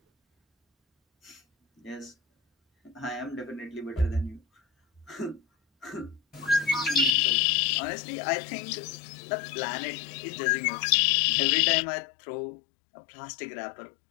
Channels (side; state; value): right; drops out; at 7.1 s